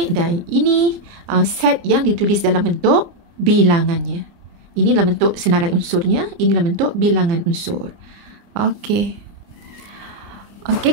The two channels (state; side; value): late; left; 29 ms